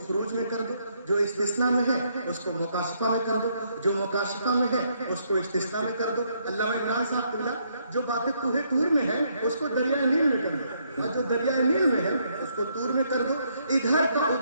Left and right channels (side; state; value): both; inverted; correlation -0.73